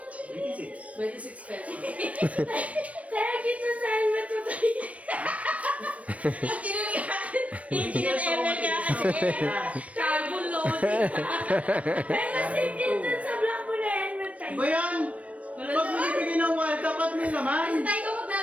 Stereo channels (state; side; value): late; left; 0.066 ms